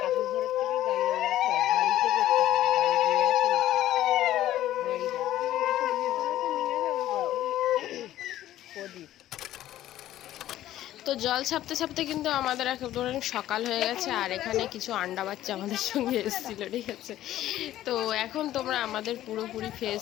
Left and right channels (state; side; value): quieter; right; 13.5 dB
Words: ঠাকুর ঘরের থেকে জ্বালিয়ে হাড়িতে করতে প্রদীপ। তো জল ছাপতে ছাপতে কিন্তু আমাদের একেবারে সকাল হয়ে গেছে, আর এখানে কিছু আন্ডা বাচ্চা আমাদের সঙ্গে এসেছিলো, ঠিক আছে। তো এখন তোমরা আমাদের পুরোপুরি